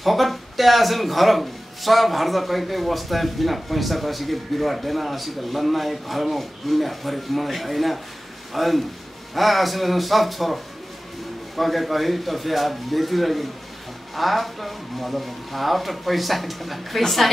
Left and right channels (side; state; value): both; normal; correlation 0.96